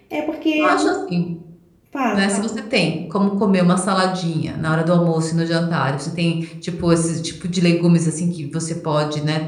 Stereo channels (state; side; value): identical; both; correlation 1.00